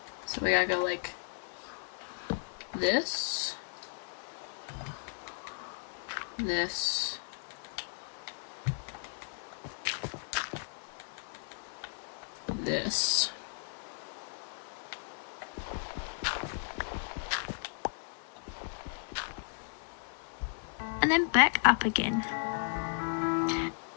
So we gotta go like this, this, this. And then back up again.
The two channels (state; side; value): silent; right; 54 dB below the other